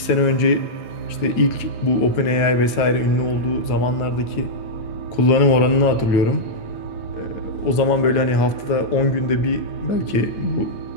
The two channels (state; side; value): late; right; 8.7 ms